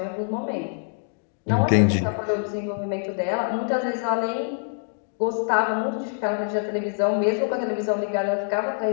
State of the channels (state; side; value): silent; right; digital silence